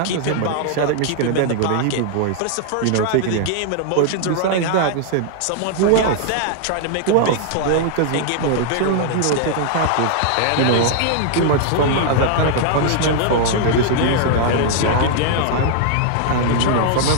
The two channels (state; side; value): different; both; correlation -0.01